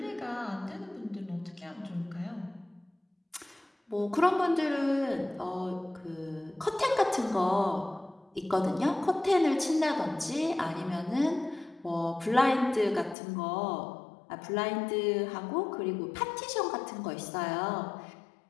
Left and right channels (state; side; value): drops out; right; at 13.2 s